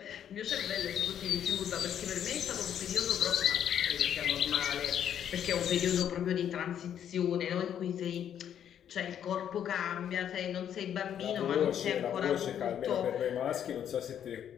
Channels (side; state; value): right; quieter; 9.5 dB